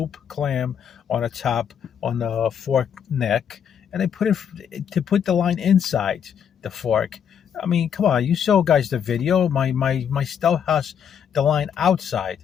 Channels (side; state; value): right; quieter; 8.1 dB